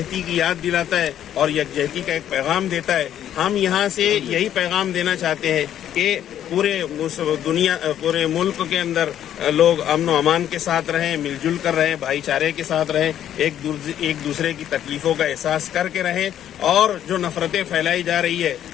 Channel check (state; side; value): quieter; right; 10.7 dB